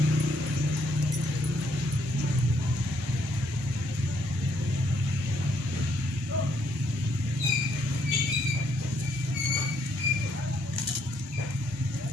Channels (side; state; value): both; normal; correlation 0.71